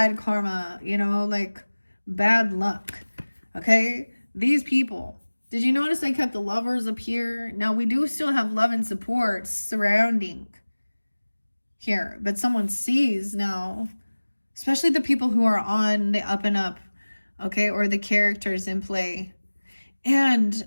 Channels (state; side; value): inverted; both; correlation -1.00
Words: karma, you know, like bad luck. Okay? These people. Did you notice I kept the Lovers up here? Now, we do still have love and support surrounding here, but someone sees now, especially the people who are on the up and up, okay, or the characters in play. And